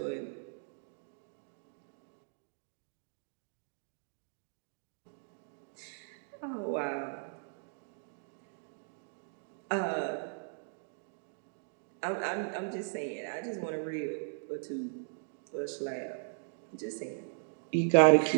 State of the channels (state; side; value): silent; left; digital silence